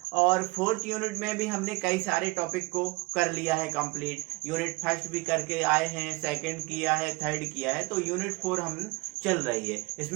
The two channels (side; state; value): left; quieter; 24.4 dB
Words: और 4th यूनिट में भी हमने कई सारे टॉपिक को कर लिया है कंप्लीट। यूनिट फर्स्ट भी करके आए हैं, सेकंड किया है, थर्ड किया है, तो यूनिट 4 हम चल रही है।